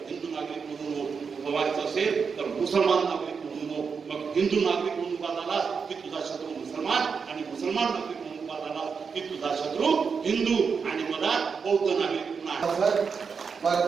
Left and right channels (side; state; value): left; quieter; 5.7 dB